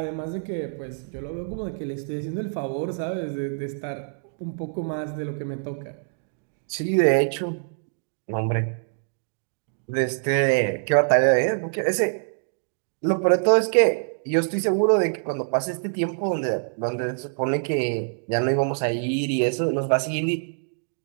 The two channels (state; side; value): silent; left; digital silence